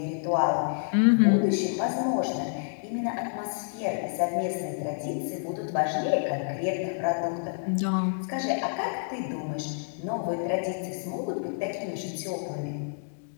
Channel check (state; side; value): silent; right; digital silence